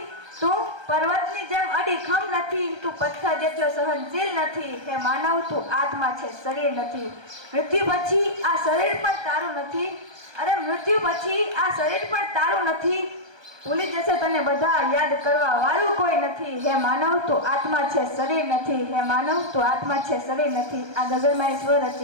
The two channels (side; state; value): left; late; 1.3 ms